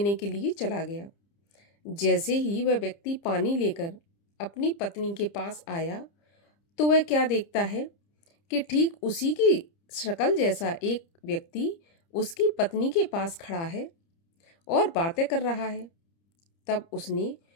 के लिए चला गया। जैसे ही वह व्यक्ति पानी लेकर अपनी पत्नी के पास आया तो वह क्या देखता है कि ठीक उसी की शक्ल जैसा एक व्यक्ति उसकी पत्नी के पास खड़ा है और बातें कर रहा है। तब उसने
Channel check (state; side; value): late; right; 30 ms